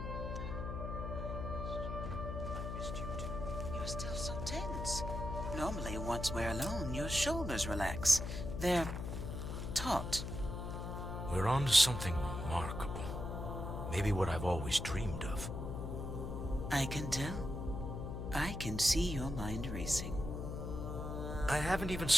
You're still so tense. Normally, once we're alone, your shoulders relax. They're taut. We're on to something remarkable. Maybe what I've always dreamed of. I can tell. I can see your mind racing. I haven't even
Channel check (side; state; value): left; noise; hum, 5 dB below the sound